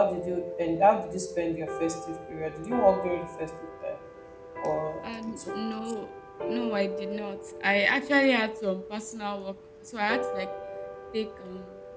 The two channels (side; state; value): both; identical; correlation 1.00